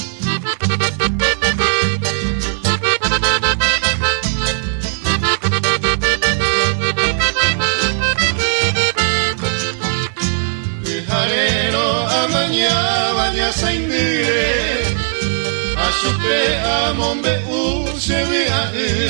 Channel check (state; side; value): silent; left; digital silence